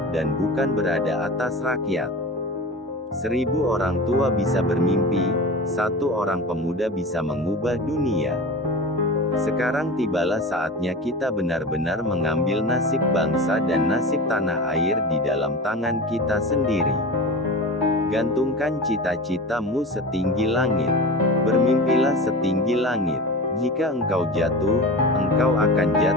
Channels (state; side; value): normal; both; correlation 0.31